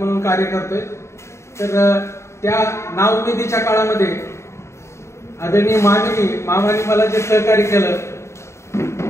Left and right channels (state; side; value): late; right; 0.13 ms